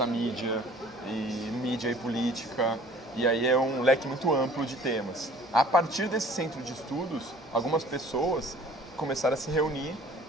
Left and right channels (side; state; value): both; normal; correlation 0.51